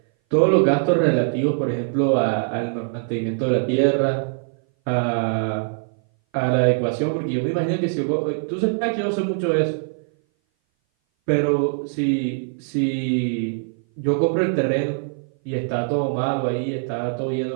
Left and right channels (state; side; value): silent; left; 59 dB below the other